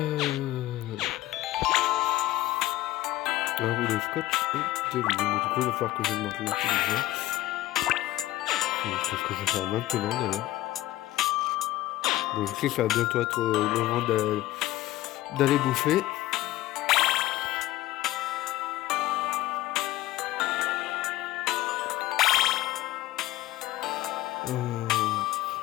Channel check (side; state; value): right; quieter; 16.1 dB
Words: Alors, le scotch et de l'huile. Du coup, il va falloir que j'augmente l'intelligence. C'est ce que je vais faire maintenant, d'ailleurs. Donc, je sais que ça va bientôt être le moment d'aller bouffer.